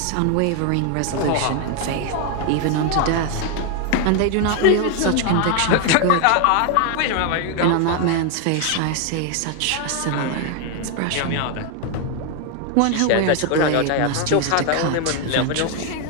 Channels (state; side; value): different; both; correlation 0.01